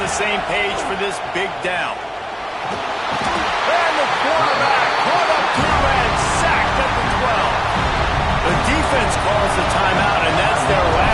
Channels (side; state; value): both; identical; correlation 1.00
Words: the same page for this big down. And the quarterback caught up to and sacked at the 12. The defense calls the timeout, and that's their